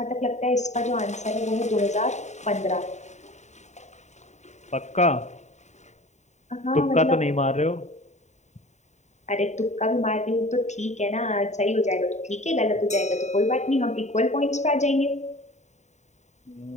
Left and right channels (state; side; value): late; right; 0.34 ms